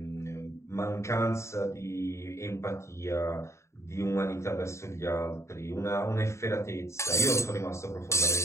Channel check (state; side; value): late; right; 0.14 ms